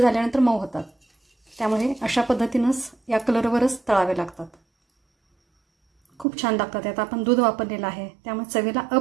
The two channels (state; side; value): drops out; left; at 6.2 s